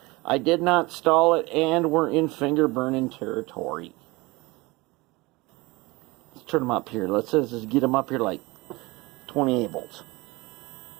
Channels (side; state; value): left; quieter; 23.1 dB